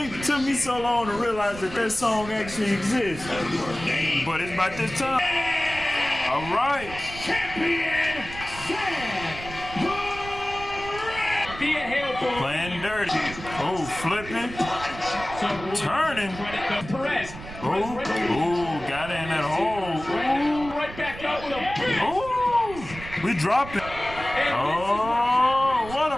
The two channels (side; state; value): right; noise; rumble, 13 dB below the sound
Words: took me so long to realize that that song actually exists. But it's about this time. All right. Thea Hail Playing dirty. Oh, flipping. Turning. Perez. Oh, got it in that hole. Right back up with a big. Oh, we dropping. Oh, what a